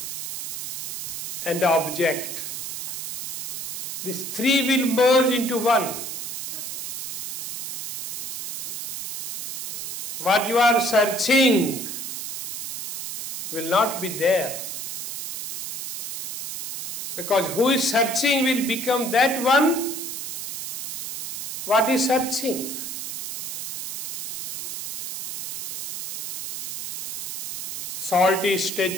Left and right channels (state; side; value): noise; right; hiss, 4 dB below the sound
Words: and the object, these three will merge into one. What you are searching will not be there. Because who is searching will become that one what is searching. Salty